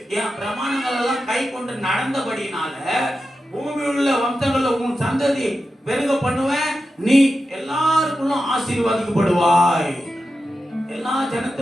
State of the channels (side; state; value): both; normal; correlation 0.91